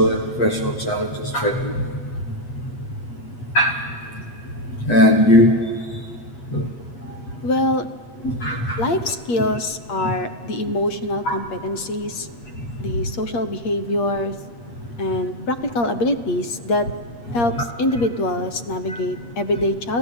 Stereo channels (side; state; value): right; late; 8.5 ms